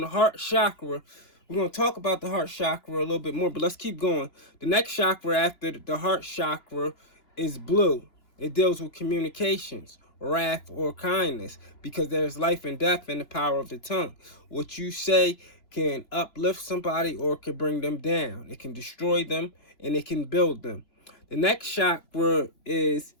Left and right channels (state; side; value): late; right; 3.0 ms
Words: heart chakra, we're going to talk about the heart chakra a little bit more, but let's keep going. The next chakra after the heart chakra is blue. It deals with communications, wrath, or kindness, because there's life and death in the power of the tongue. What you say can uplift somebody or can bring them down. It can destroy them, and it can build them. The next chakra is